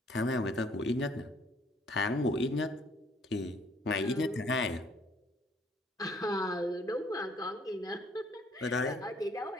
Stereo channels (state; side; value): normal; both; correlation 0.62